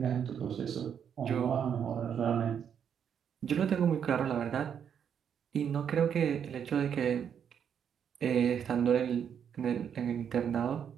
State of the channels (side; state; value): left; quieter; 8.1 dB